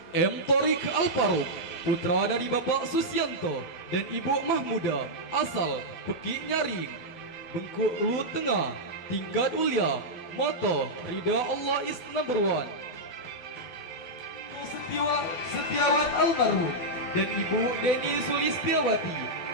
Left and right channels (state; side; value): late; right; 12 ms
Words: M. Torik Al-Faruq, putra dari Bapak Susianto dan Ibu Mahmuda, asal Pekik Nyaring, Bengkulu Tengah. Tingkat Ulia, moto, ridha Allah is number one. Setiawan almarhum dan Ibu Deni Sulistiawati,